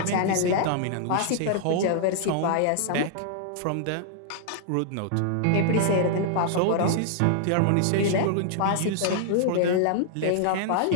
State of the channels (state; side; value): different; both; correlation -0.01